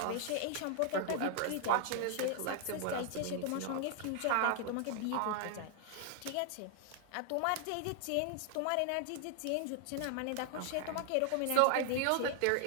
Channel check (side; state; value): both; different; correlation 0.00